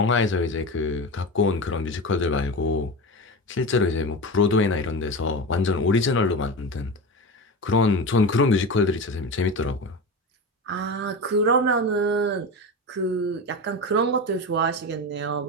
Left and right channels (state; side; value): normal; both; correlation 0.24